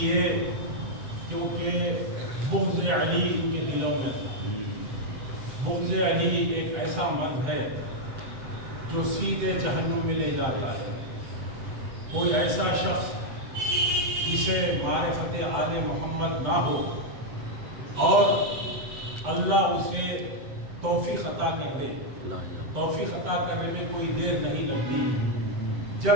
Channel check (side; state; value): left; late; 7.8 ms